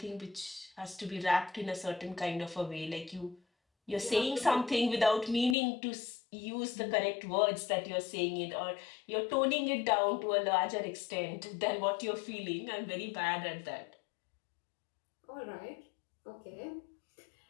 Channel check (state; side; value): drops out; right; at 5.6 s